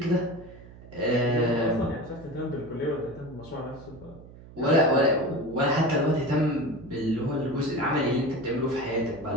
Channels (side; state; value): right; noise; hum, 19 dB below the sound